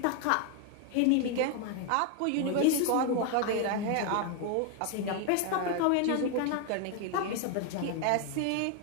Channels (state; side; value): different; both; correlation 0.00